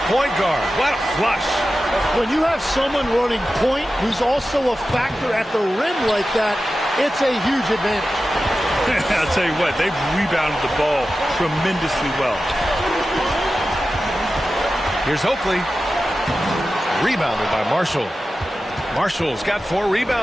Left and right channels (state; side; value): normal; both; correlation 0.93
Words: point guard. What a flush. When you have someone running point who's also a factor at the rim like that, it's a huge advantage. I'll tell you what, they've rebounded the ball tremendously well. Here's Oakley. Rebounded by Marshall. Marshall's got 4